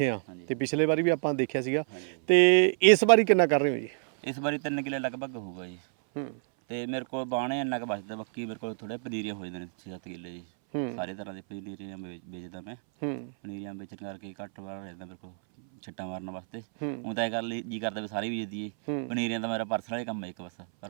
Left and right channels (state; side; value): silent; left; 58 dB below the other